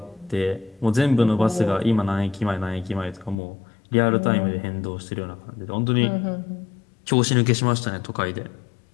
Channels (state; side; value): drops out; right; at 3.4 s